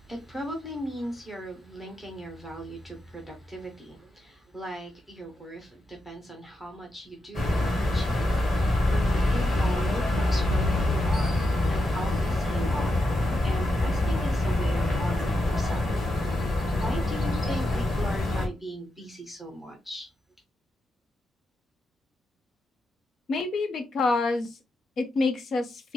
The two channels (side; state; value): both; normal; correlation 0.86